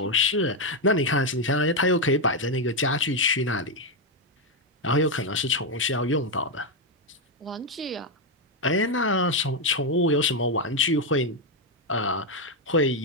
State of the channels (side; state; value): both; normal; correlation 0.04